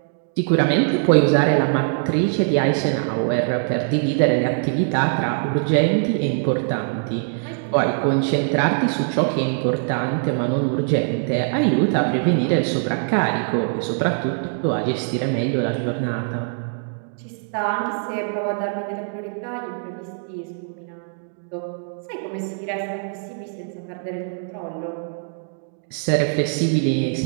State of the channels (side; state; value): left; silent; digital silence